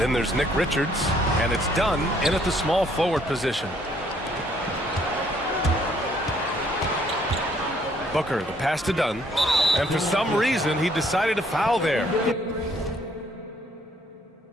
there's Nick Richards, and it's Dunn in at the small forward position. Booker, the pass to Dunn, and for some reason he decided to foul there.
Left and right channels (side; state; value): both; normal; correlation 0.65